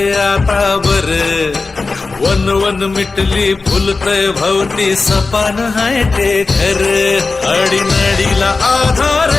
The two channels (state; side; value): quieter; right; 3.9 dB